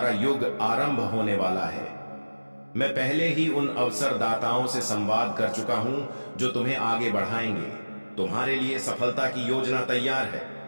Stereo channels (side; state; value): both; inverted; correlation -1.00